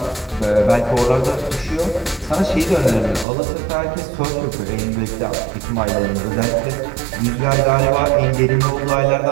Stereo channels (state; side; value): drops out; left; at 3.2 s